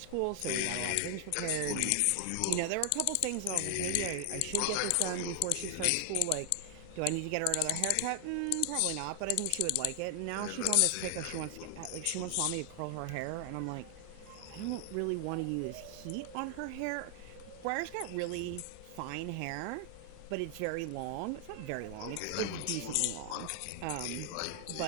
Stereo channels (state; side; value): different; both; correlation 0.00